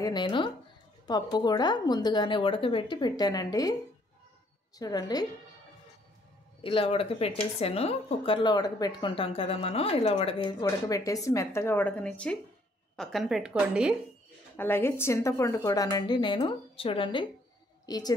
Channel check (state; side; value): normal; both; correlation 0.66